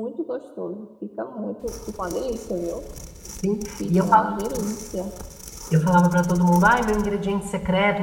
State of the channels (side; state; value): both; identical; correlation 1.00